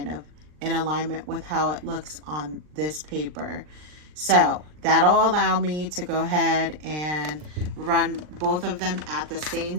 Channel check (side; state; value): left; late; 39 ms